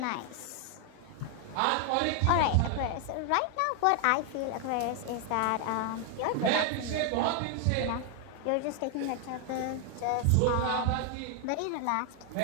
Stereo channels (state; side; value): different; both; correlation 0.00